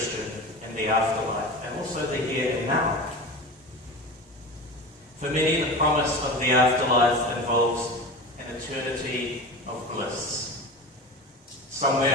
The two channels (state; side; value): normal; both; correlation 0.30